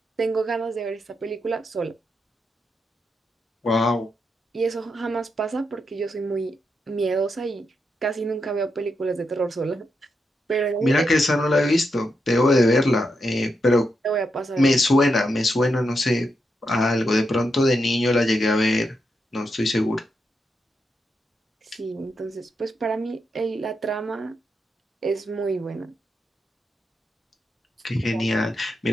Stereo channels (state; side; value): normal; both; correlation 0.84